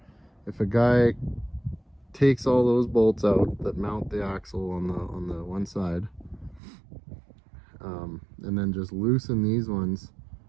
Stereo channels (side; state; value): left; drops out; at 6.6 s